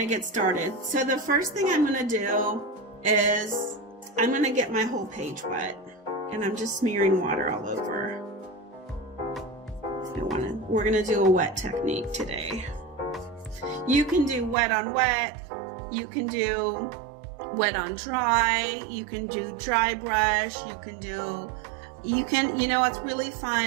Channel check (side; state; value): left; drops out; at 14.6 s